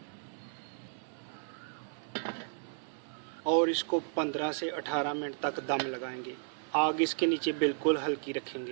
और इसको 15 से 18 मिनट तक दम लगाएंगे। आग इसके नीचे बिल्कुल हल्की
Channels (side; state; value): left; silent; 55 dB below the other